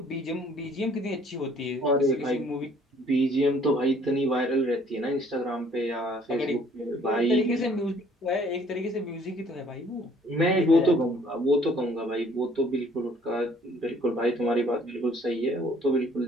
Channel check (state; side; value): normal; both; correlation 0.59